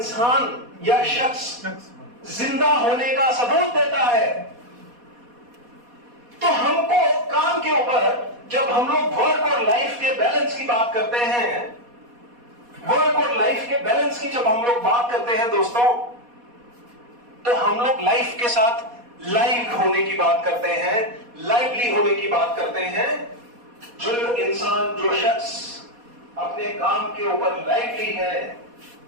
या शख्स जिंदा होने का सबूत देता है। तो हमको काम के ऊपर जब हम लोग वर्क और लाइफ के बैलेंस की बात करते हैं, वर्क और लाइफ के बैलेंस की जब हम लोग बात करते हैं दोस्तों, तो हम लोग लाइफ के साथ लाइव होने की बात करते हैं, लाइवली होने की बात करते हैं। जो इंसान, जो शख्स अपने काम के ऊपर लाइवली है,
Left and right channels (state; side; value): late; left; 4.2 ms